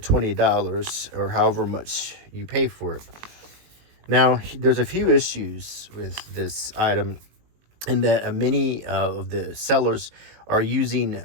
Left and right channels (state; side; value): late; left; 19 ms